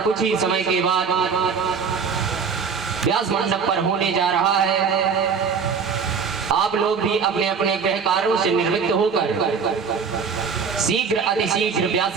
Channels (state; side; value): quieter; left; 5.9 dB